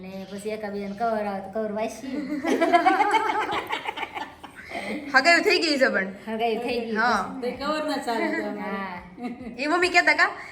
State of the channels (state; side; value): identical; both; correlation 1.00